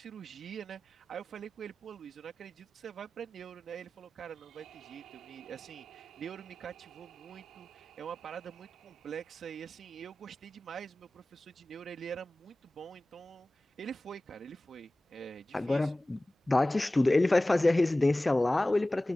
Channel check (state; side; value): normal; both; correlation 0.97